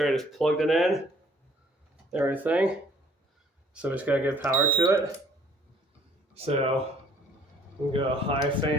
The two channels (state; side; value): normal; both; correlation 0.59